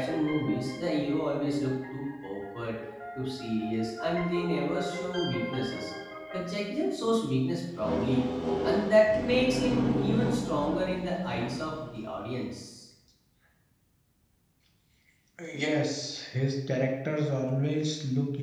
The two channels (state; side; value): identical; both; correlation 1.00